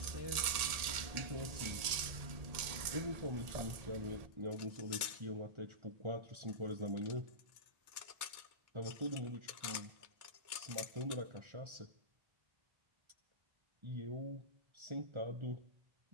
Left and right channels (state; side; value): late; left; 1.7 ms